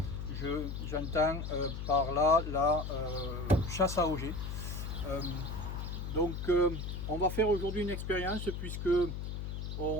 J'entends par là la chasse à auger. On va faire aujourd'hui une expérience puisque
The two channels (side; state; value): left; noise; hum, 5 dB below the sound